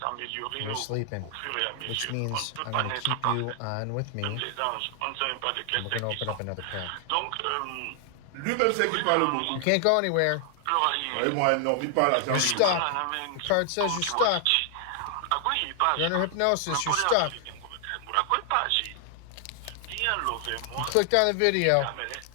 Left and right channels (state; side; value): different; both; correlation 0.00